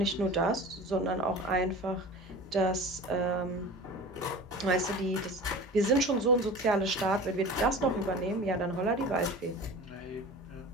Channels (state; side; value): normal; both; correlation 0.37